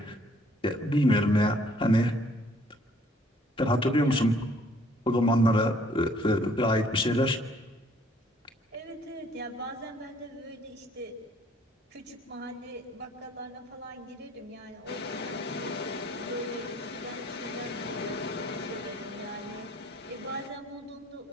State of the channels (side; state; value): both; normal; correlation 0.61